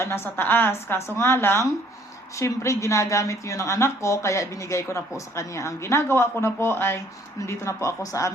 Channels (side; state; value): both; normal; correlation 0.60